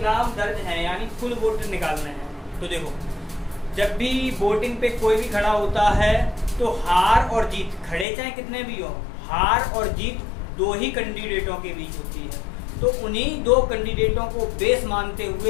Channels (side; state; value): right; drops out; at 8.1 s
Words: दर्ज हैं, यानी कुल वोट निकालने हैं। तो देखो, जब भी वोटिंग पे कोई भी खड़ा होता है तो हार और जीत, खड़े चाहे कितने भी हो, हार और जीत दो ही कैंडिडेटों के बीच होती है। तो उन्हीं दो कैंडिडेटों को बेस मानते